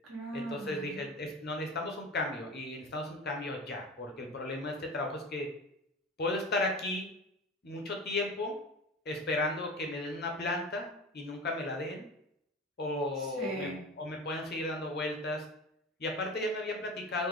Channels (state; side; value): normal; both; correlation 0.32